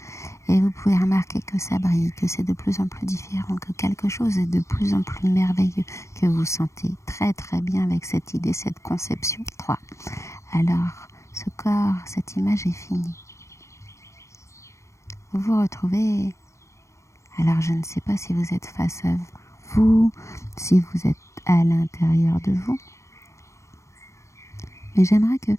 Et vous pouvez remarquer que ça brille, que c'est de plus en plus différent, que quelque chose est de plus en plus merveilleux, que vous sentez très très bien avec cette idée, cette conception. 3. Alors, ce corps, cette image est finie. Vous vous retrouvez, alors je ne sais pas si vous êtes face à vous, si vous êtes à l'intérieur de vous, mais j'aimerais que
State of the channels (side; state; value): right; late; 0.14 ms